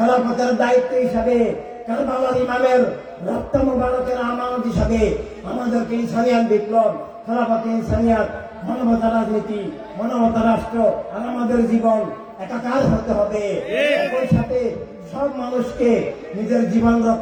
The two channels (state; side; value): identical; both; correlation 1.00